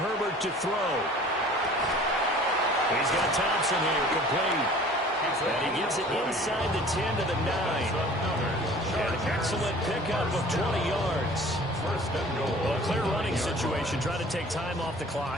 Herbert to throw. He's got Thompson here, complete. And he gets it inside the 10 to the 9. An excellent pickup of 20 yards. Well, a clear running situation. Try to take time off the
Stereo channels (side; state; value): both; normal; correlation 0.47